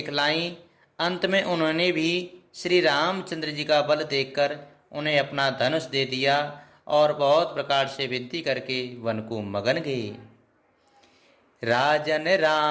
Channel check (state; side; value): identical; both; correlation 1.00